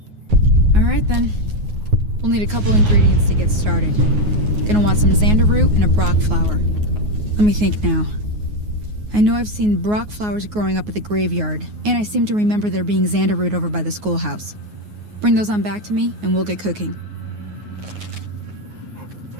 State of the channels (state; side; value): late; left; 9.5 ms